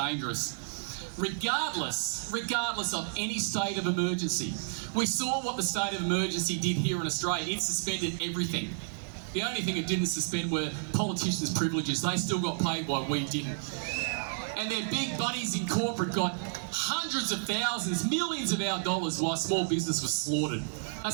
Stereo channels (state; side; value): silent; left; 57 dB below the other